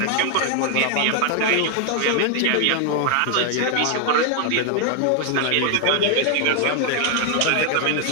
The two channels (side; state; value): both; different; correlation 0.00